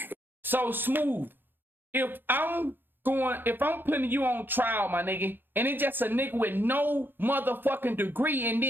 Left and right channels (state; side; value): late; left; 0.097 ms